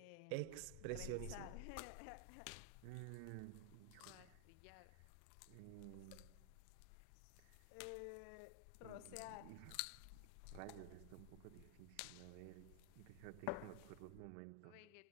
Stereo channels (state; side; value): different; both; correlation 0.00